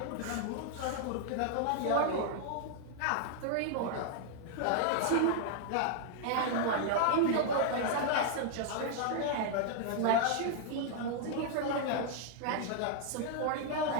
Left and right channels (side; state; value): both; different; correlation 0.00